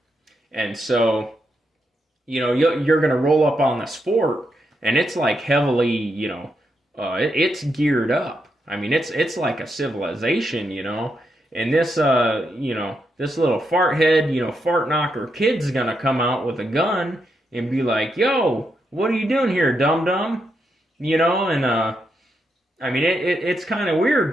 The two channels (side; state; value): both; normal; correlation 0.82